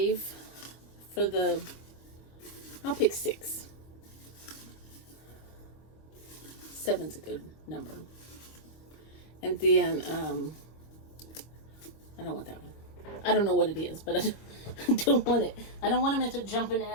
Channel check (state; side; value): late; right; 25 ms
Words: for the, I'll pick 6. 7's a good number. And then, I don't want that one. I don't know what it is, but I don't want it. I don't want them to jumping